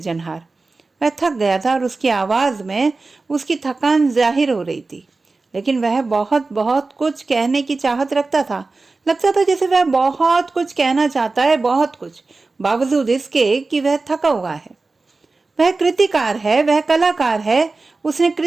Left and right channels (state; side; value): quieter; left; 3.7 dB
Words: वह थक गया था और उसकी आवाज में उसकी थकान जाहिर हो रही थी, लेकिन वह बहुत बहुत कुछ कहने की चाहत रखता था। लगता था जैसे वह बहुत कुछ कहना चाहता है, बहुत कुछ, बावजूद इसके कि वह थका हुआ है। वह कृतिकार है, वह कलाकार है। उसने